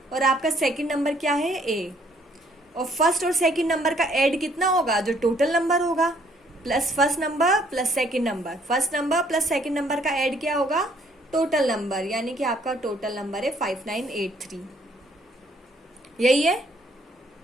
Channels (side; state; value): both; normal; correlation 0.64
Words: और आपका सेकंड नंबर क्या है, ए। और फर्स्ट और सेकंड नंबर का ऐड कितना होगा, जो टोटल नंबर होगा, plus first number plus second number. First number plus second number का ऐड क्या होगा, टोटल नंबर, यानी कि आपका टोटल नंबर है 5983। यही है,